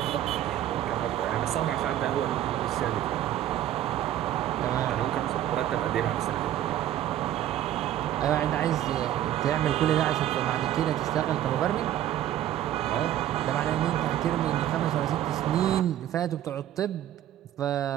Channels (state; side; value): quieter; left; 12.1 dB